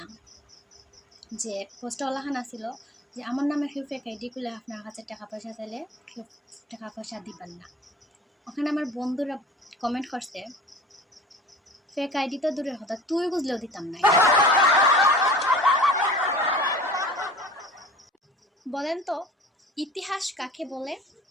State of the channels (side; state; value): both; normal; correlation 0.42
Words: যে পোস্টওয়ালাখান আসছিল যে আমার নামে কেউ ফেক আইডি খুলে আপনার কাছে টাকা পয়সা চাইলে কেউ টাকা পয়সা দিবেন না। ওখানে আমার বন্ধুরা কমেন্ট করছে, ফেক আইডি তো দূরের কথা, তুই বুঝলেও দিতাম না। বলেন তো ইতিহাস কাকে বলে?